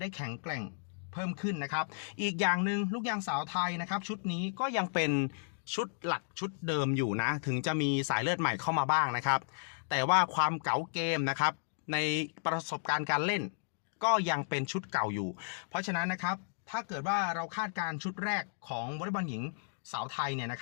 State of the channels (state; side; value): silent; right; digital silence